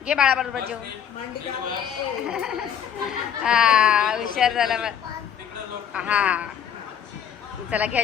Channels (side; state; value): right; quieter; 8.7 dB